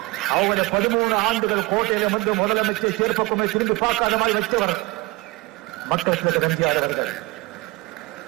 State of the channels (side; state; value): left; quieter; 22.2 dB